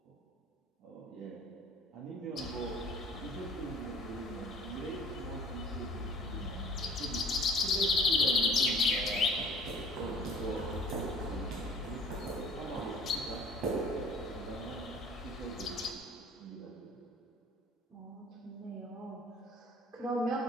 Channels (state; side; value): normal; both; correlation 0.52